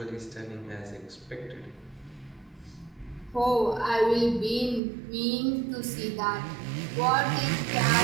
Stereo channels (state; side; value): drops out; left; at 4.8 s